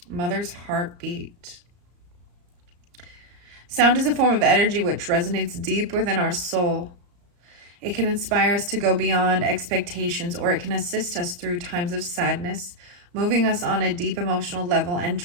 Mother's heartbeat. Sound is a form of energy which resonates deep within our soul. It can inspire us to go beyond expectations, or it can assist us through times of sadness, moving us on a deep emotional level and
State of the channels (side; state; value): left; late; 34 ms